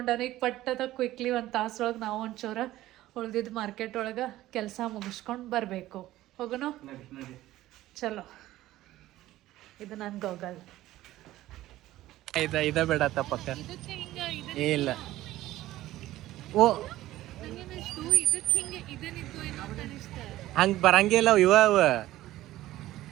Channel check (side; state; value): left; quieter; 15.4 dB